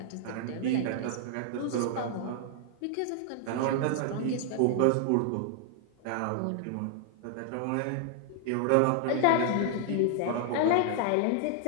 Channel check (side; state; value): both; different; correlation -0.01